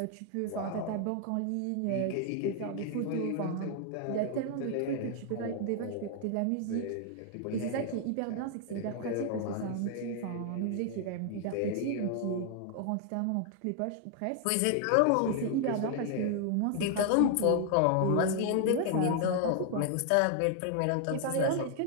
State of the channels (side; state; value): both; different; correlation 0.00